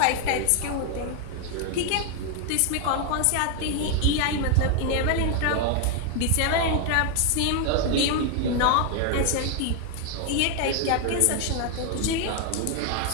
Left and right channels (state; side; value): different; both; correlation 0.00